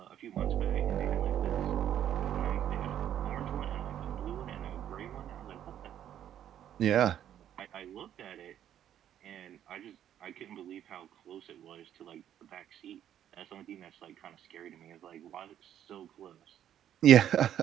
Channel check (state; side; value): quieter; left; 10.6 dB